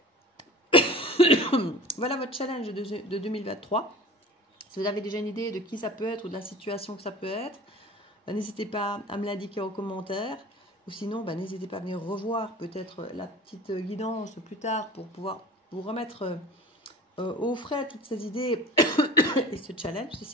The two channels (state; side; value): normal; both; correlation 0.41